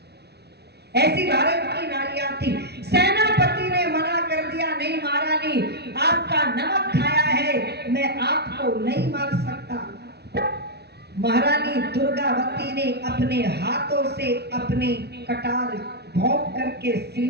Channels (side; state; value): left; late; 0.48 ms